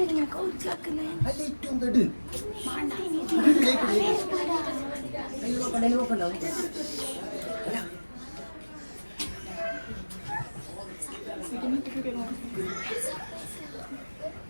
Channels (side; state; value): both; inverted; correlation -1.00